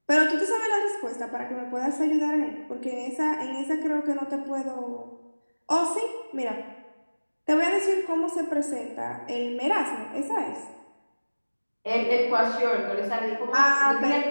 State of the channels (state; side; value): inverted; both; correlation -1.00